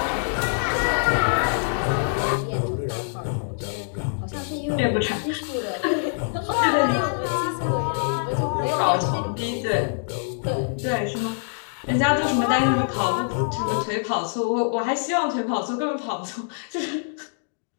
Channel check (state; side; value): silent; right; digital silence